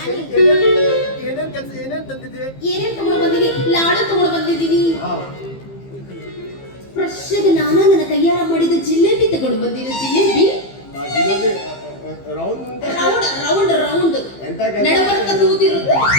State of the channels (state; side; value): late; right; 15 ms